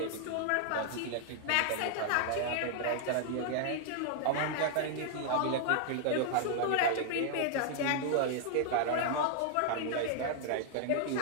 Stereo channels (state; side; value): different; both; correlation 0.00